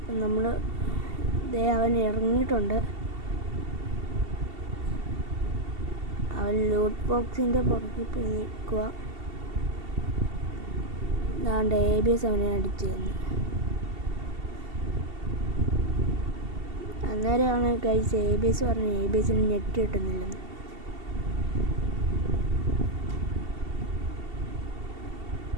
നമ്മൾ അവൻ ഇറങ്ങിയിട്ടുണ്ട്. അവൻ ലൂട്ട് ബോക്സിൻ്റെ പുറകിൽ പോയി നിൽക്കുക. അതാണ്ട് ABS അവനെ അടിച്ചു തന്നു. അന്നേരമാണ് ഗൈസ് ABS പറഞ്ഞു ABSന് നെറ്റ് കിട്ടുന്നില്ലെന്ന്.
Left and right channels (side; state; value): left; late; 2.7 ms